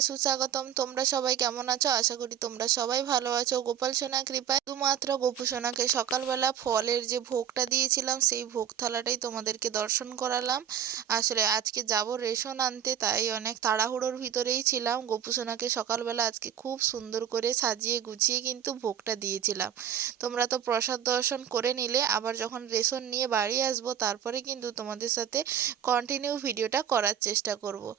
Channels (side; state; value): left; quieter; 9.5 dB